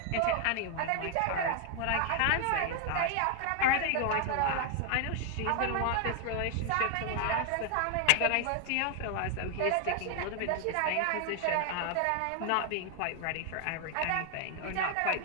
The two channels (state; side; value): different; both; correlation 0.00